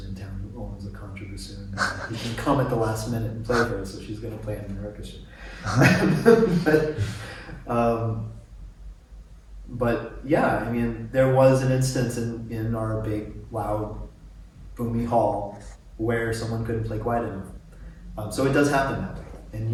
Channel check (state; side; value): identical; both; correlation 1.00